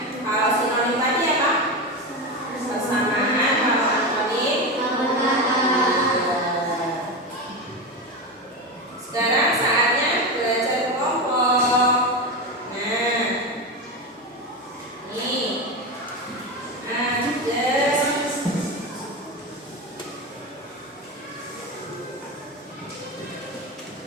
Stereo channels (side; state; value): both; normal; correlation 0.18